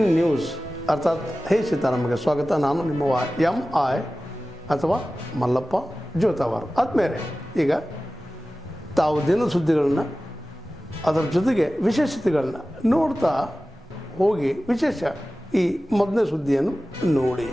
news ಅರ್ಥಾತ್ ಹೇ ಸೀತಾರಾಮಗೆ ಸ್ವಾಗತ. ನಾನು ನಿಮ್ಮ MI ಅಥವಾ ಮಲ್ಲಪ್ಪ ಜೋತಾವಾರ್. ಆದ್ಮೇಲೆ ಈಗ ತಾವು ದಿನ ಸುದ್ದಿಗಳನ್ನ ಅದರ ಜೊತೆಗೆ ವಿಶೇಷತೆಗಳನ್ನ ನೋಡ್ತಾ ಹೋಗಿ ವಿಶೇಷ ಈ ಮೊದಲನೇ ಸುದ್ದಿಯನ್ನು ನೋಡಿ.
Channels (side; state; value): both; normal; correlation 0.96